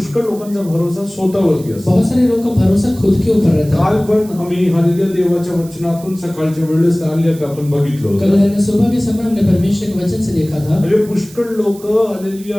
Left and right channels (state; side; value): noise; right; hiss, 21 dB below the sound